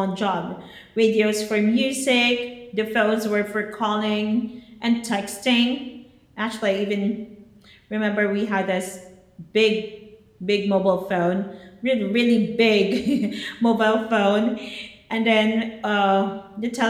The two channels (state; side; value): identical; both; correlation 1.00